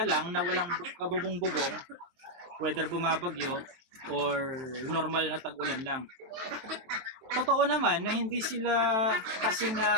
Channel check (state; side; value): late; left; 23 ms